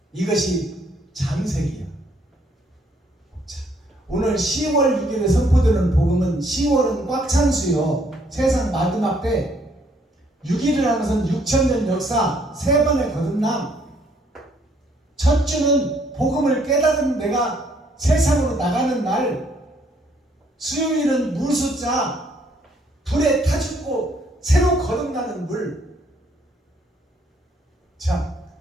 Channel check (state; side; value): normal; both; correlation 0.67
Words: 이것이 장색이야. 자, 오늘 10월 6일에 선포되는 복음은 10월은 꽉 찬 수요. 세상 마지막 때 6일을 하는 것은 6,000년 역사 3번의 거듭남. 첫 주는 복음을 깨달은 내가 세상으로 나가는 날, 수요일은 물숫자 불에 타 죽고 새로 거듭나는 물. 자,